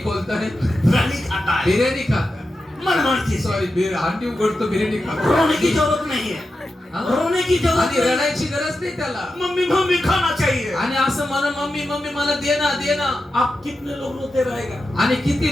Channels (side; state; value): both; normal; correlation 0.90